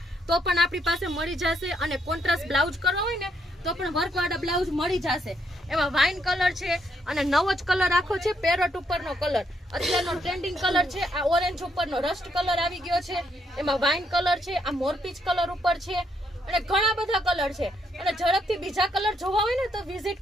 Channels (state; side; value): normal; both; correlation 0.74